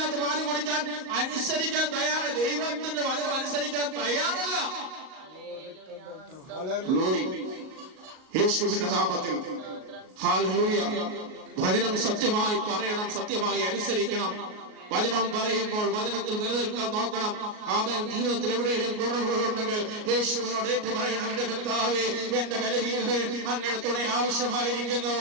പാല് കുടിക്കാൻ അനുസരിക്കാൻ തയ്യാറ്, ദൈവത്തിന്റെ വചനം അനുസരിക്കാൻ തയ്യാറല്ല. യേശുവിന്റെ നാമത്തിൽ. ഹല്ലേലൂയ. വചനം സത്യമായി പറയണം, സത്യമായി അനുസരിക്കണം. വചനം പറയുമ്പോൾ വചനത്തിൽ നിലനിൽക്കാൻ നോക്കണം. അവൻ ജീവിതത്തിൽ എവിടെയും കുറവുകളുണ്ടെങ്കിൽ യേശുവിനോട് ഏറ്റു പറയണം, എന്റെ കർത്താവേ, എന്റെ ബലഹീനത അങ്ങനെ തുണ ആവശ്യമായിരിക്കുന്നു,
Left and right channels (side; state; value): left; late; 38 ms